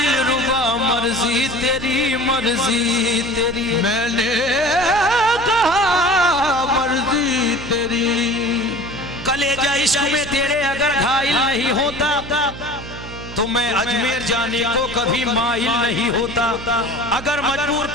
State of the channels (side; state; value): right; noise; hum, 12 dB below the sound